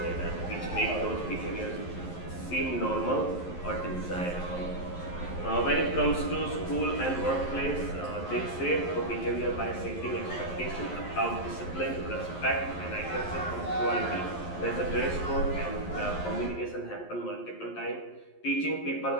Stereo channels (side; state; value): right; late; 11 ms